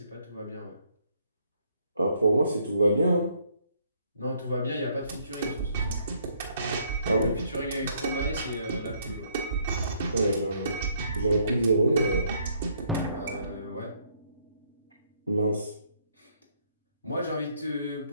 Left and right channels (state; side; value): inverted; both; correlation -0.67